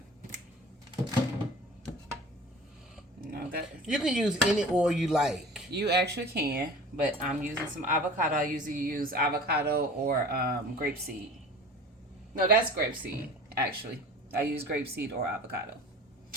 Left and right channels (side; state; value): both; normal; correlation 0.40